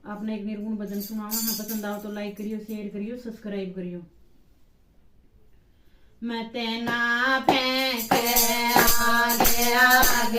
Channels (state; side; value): identical; both; correlation 1.00